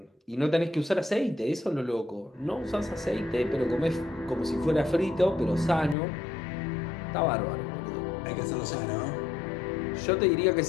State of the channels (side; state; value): right; drops out; at 6.0 s